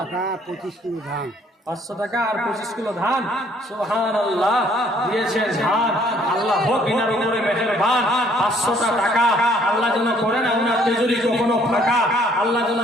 25 কিলো ধান, 500 টাকা আর 25 কিলো ধান, সুবহানাল্লাহ দিয়েছেন ধান। আল্লাহ হোক ইনার উপরে মেহেরবান। 500টা টাকা আল্লাহ যেন করে না উনার তেজুরি কখনো ফাঁকা, আল্লাহ যেন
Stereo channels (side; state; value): both; normal; correlation 0.62